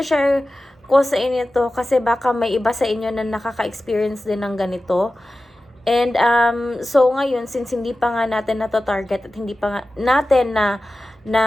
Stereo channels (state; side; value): normal; both; correlation 0.95